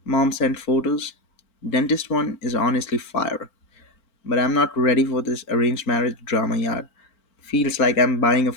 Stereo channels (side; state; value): right; late; 3.8 ms